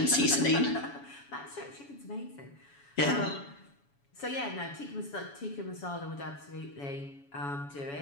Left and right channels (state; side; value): late; right; 7.1 ms